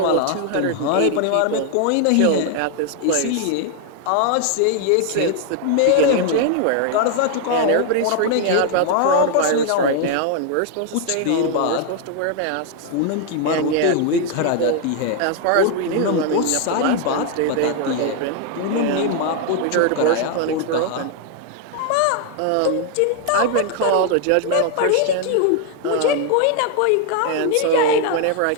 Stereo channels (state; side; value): different; both; correlation 0.00